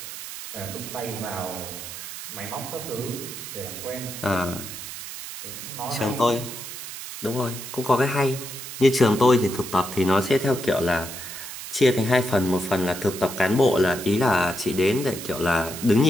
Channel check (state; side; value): noise; right; hiss, 10 dB below the sound